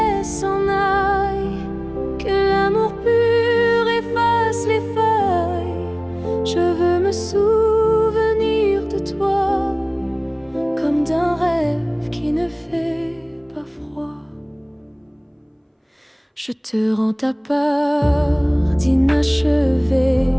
s'en aille, que l'amour pur efface les feuilles. Je veux me souvenir de toi comme d'un rêve qui ne fait pas froid. Je te rends ta part d'inachevé,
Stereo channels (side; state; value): both; identical; correlation 1.00